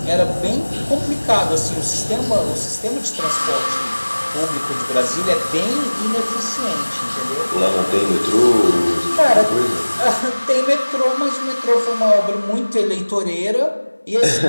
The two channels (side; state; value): both; inverted; correlation -1.00